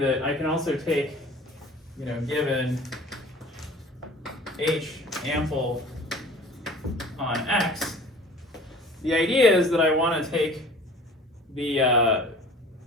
I can also take, given h ample on x, the idea is that I want to take the,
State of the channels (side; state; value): both; normal; correlation 0.45